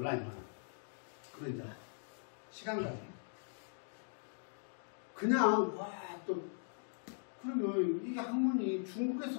많아. 그런 이제 시간 가지고. 그냥 또 그러면 이게 학문이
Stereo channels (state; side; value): silent; right; digital silence